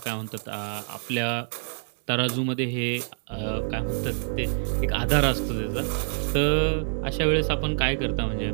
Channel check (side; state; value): left; silent; digital silence